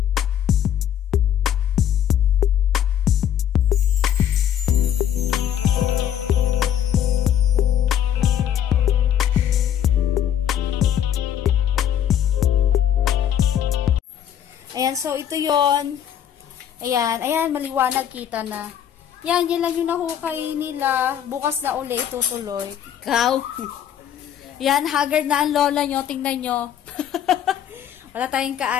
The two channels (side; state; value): right; quieter; 9.9 dB